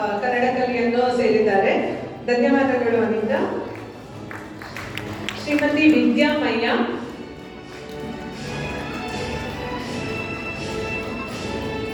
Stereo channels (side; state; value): both; identical; correlation 1.00